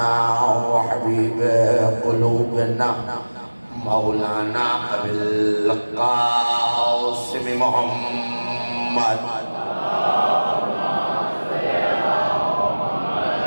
وحبيب قلوبنا مولانا أبي القاسم محمد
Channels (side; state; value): both; inverted; correlation -1.00